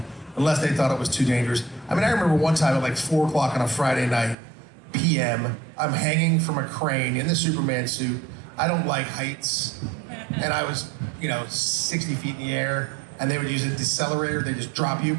unless they thought it was too dangerous. I mean, I remember one time at like 4 o'clock on a Friday night, PM, I'm hanging from a crane in the Superman suit. I don't like heights. And I was, 60 feet in the air, and they would use a decelerator. They just drop you,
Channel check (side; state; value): left; drops out; at 4.4 s